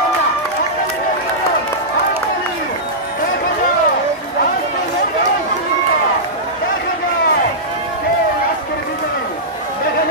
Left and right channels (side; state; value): both; normal; correlation -0.14